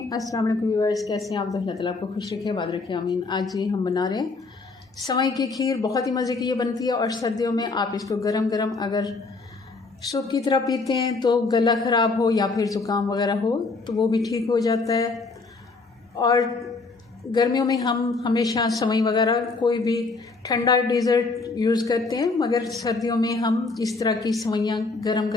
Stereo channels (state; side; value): quieter; right; 3.9 dB